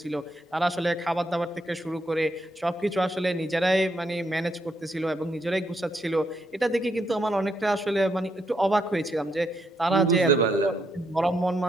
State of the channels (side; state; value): both; normal; correlation 0.77